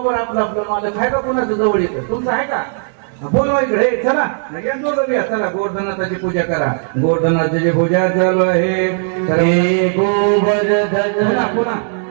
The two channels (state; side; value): silent; left; digital silence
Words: आपलं मालक आहे का, कोणाचं जवळ येतं, तुमचं आहे का? बोलवा इकडे, चला चला गोवर्धननाथाची पूजा करा. गोवर्धननाथाची पूजा चालू आहे. गोवर्धन पुन्हा